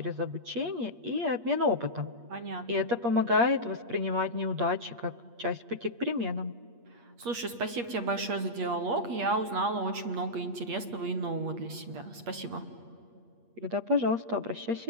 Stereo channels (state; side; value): late; left; 8.5 ms